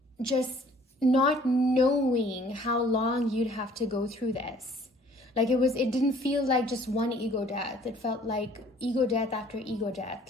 just not knowing how long you'd have to go through this. Like it didn't feel like just one ego death. It felt like ego death after ego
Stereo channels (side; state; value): both; normal; correlation 0.56